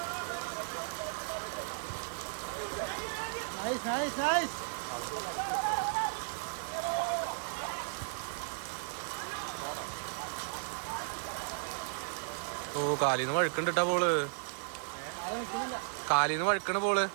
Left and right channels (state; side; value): silent; left; digital silence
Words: ഓ, കാലിന്ന് വഴുക്കണ്ടിട്ടാ ബോള്. കാലിന്ന് വഴുക്കണ ബോള്.